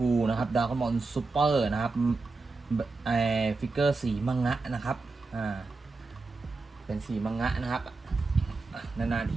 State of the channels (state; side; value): quieter; left; 3.7 dB